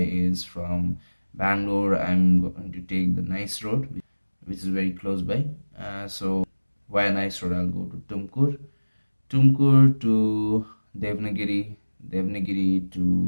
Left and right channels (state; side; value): inverted; both; correlation -1.00